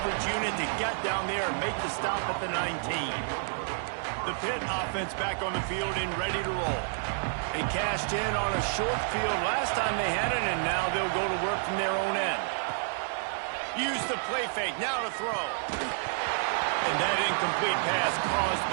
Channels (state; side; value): silent; left; digital silence